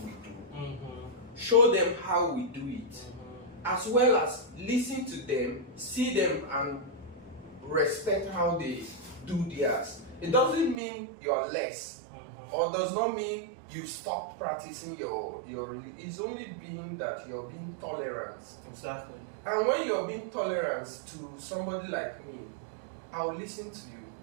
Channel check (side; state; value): left; drops out; at 10.8 s